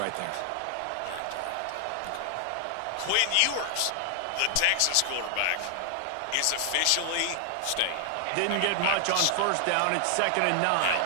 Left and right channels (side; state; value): both; different; correlation 0.00